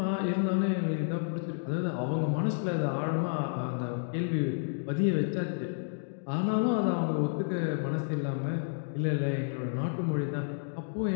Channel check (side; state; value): right; silent; digital silence